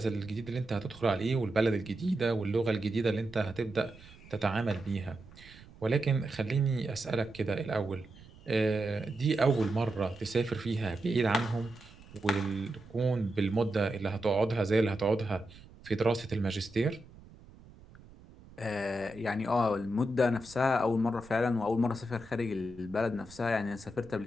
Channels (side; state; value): right; noise; rumble, 21 dB below the sound